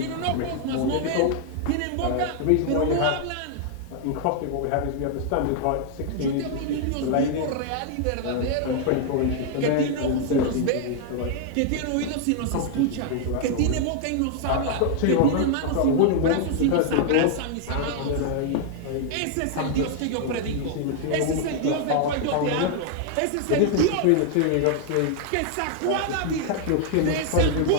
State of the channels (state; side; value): different; both; correlation 0.00